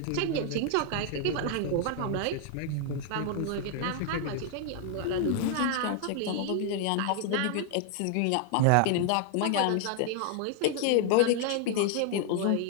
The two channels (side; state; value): both; different; correlation 0.00